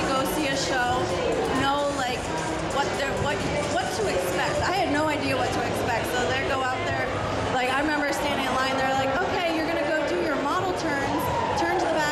go see a show. Know like what to expect. I had no idea what to expect, so they go out there. Like, I remember standing in line. They're like, "Okay, you're gonna go do your model turns, turn to the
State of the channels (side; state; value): both; identical; correlation 1.00